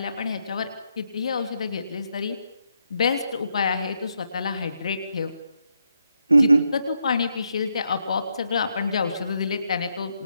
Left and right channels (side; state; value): both; inverted; correlation -0.80